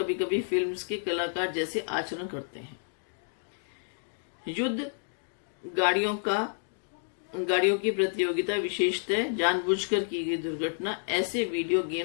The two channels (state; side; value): silent; right; digital silence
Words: कभी फिल्म्स के कलाकार जैसे आचरण करते हैं। युद्ध गाड़ियों की प्रतियोगिता, विशेषतः जानबूझकर की गई दुर्घटना, ऐसे वीडियो